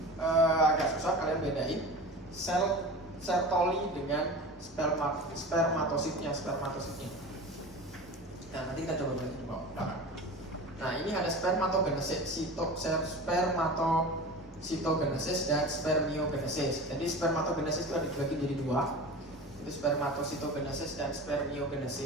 agak susah kalian bedain sel Sertoli dengan spermatositnya. Nah, nanti kita coba belajar di belakang. Nah, ini ada spermatogenesis, spermatositogenesis dan spermiogenesis. Jadi spermatogenesis itu ada dibagi jadi dua. Itu spermatositogenesis dan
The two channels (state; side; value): normal; both; correlation 0.33